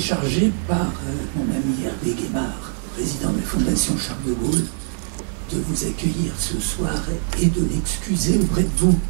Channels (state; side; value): silent; left; digital silence